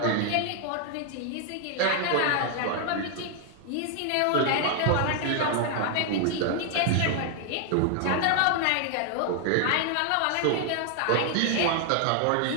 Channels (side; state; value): both; different; correlation 0.00